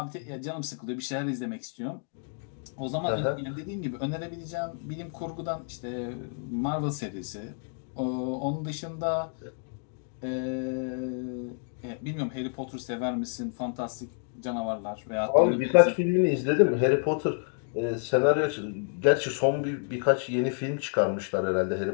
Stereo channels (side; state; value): right; silent; 58 dB below the other